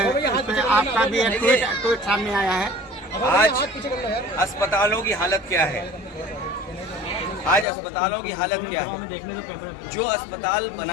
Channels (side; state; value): right; drops out; at 7.7 s